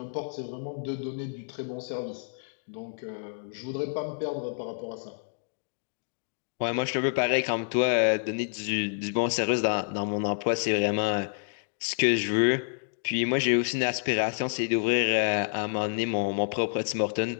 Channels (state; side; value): silent; right; digital silence